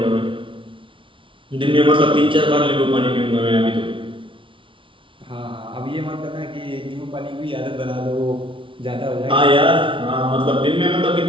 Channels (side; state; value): left; late; 0.25 ms